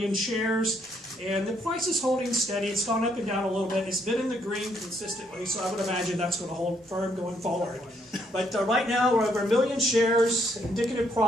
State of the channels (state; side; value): normal; both; correlation 0.71